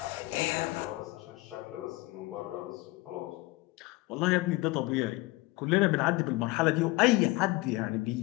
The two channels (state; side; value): quieter; right; 21.2 dB